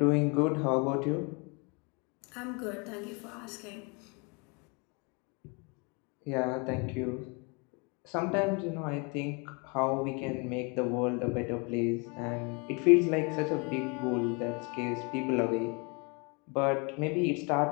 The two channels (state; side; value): quieter; right; 31.9 dB